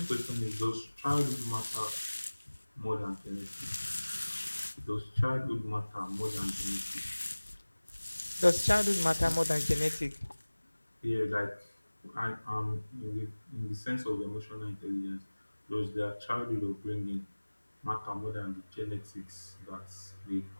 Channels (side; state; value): both; inverted; correlation -1.00